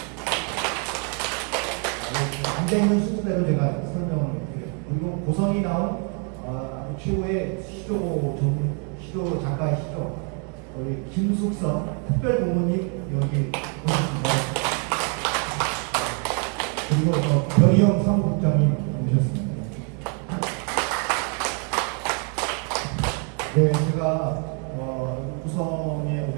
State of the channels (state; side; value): quieter; left; 39.0 dB